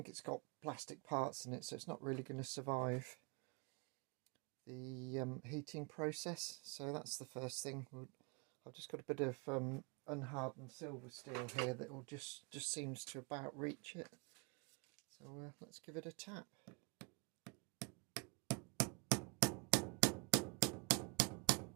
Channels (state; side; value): quieter; left; 31.0 dB